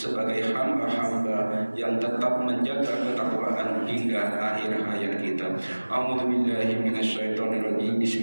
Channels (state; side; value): inverted; both; correlation -1.00